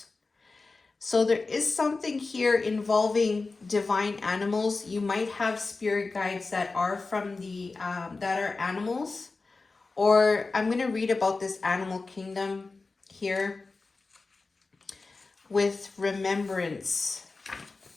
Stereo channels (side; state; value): right; quieter; 3.8 dB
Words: So there is something here involving divine animals. You might have spirit guides that are from the that are animals, or I'm going to read about this animal kingdom here with remembrance.